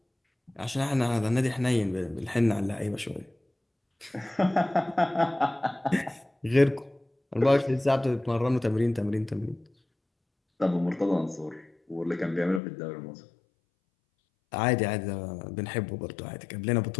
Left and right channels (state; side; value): drops out; right; at 12.6 s